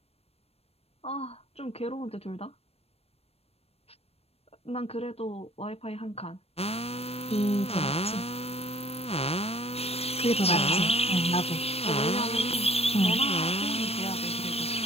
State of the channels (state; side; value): late; right; 0.29 ms